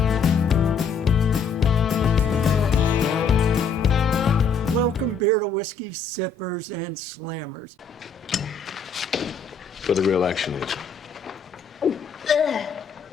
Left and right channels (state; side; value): quieter; right; 5.0 dB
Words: Welcome beer to whiskey sippers and slammers. For the real action is.